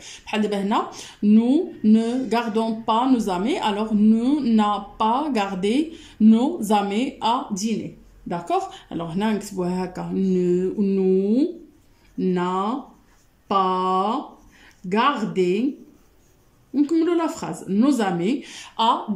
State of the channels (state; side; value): identical; both; correlation 1.00